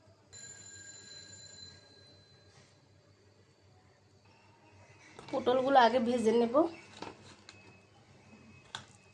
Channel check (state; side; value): identical; both; correlation 1.00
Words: পটলগুলো আগে ভেজে নেব,